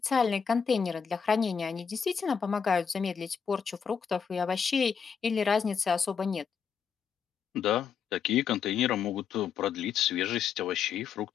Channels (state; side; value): quieter; right; 6.8 dB